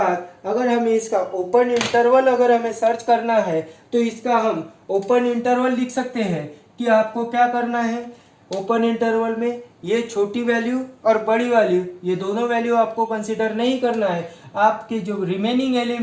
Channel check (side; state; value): both; identical; correlation 1.00